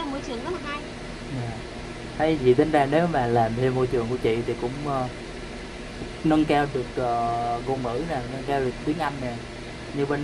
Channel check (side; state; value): both; identical; correlation 1.00